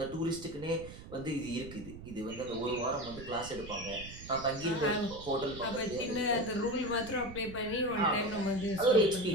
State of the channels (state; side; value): noise; right; rumble, 14 dB below the sound